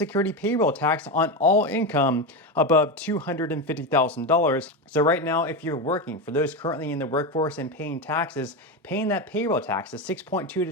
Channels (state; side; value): normal; both; correlation 0.15